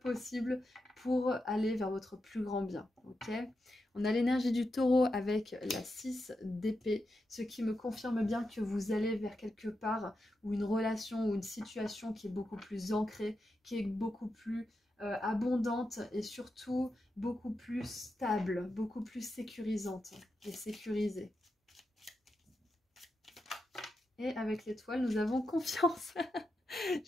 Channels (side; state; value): both; normal; correlation 0.87